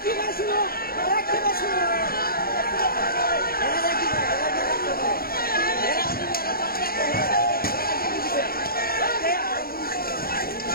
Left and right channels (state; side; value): late; right; 0.43 ms